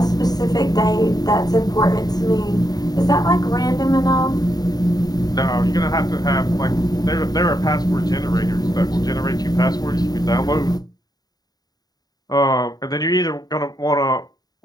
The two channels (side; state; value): right; late; 0.19 ms